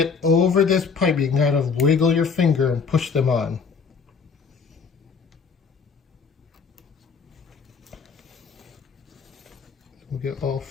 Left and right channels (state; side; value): quieter; right; 5.5 dB